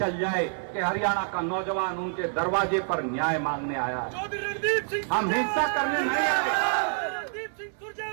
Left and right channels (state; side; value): silent; left; 60 dB below the other